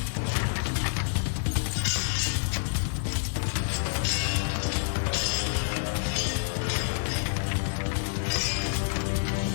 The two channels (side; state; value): right; silent; 59 dB below the other